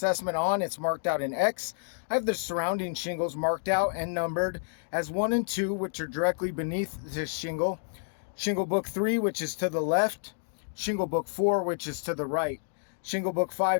on. It's marked out in X. I have the surrounding shingles marked out and numbered as 1 and 2, which are directly beneath this shingle. Shingle book 3, which is to the left. Shingle book 4, which is to the right. Shingle book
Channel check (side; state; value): right; silent; digital silence